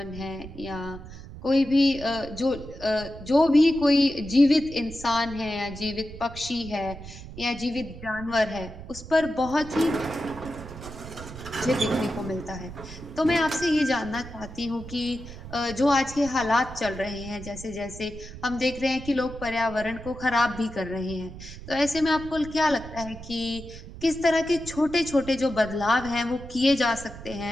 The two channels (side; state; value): right; noise; rumble, 13 dB below the sound